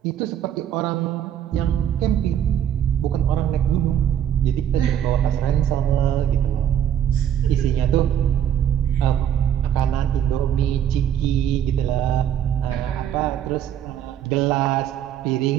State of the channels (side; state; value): left; quieter; 10.0 dB